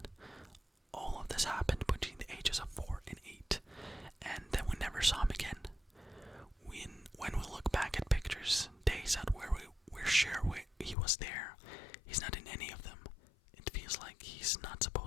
All of this happened between the ages of 4 and 8, and then we never saw him again. When we look back at pictures, days out where we're sure he was there, he's not in any of them. It feels like he's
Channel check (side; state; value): right; drops out; at 11.0 s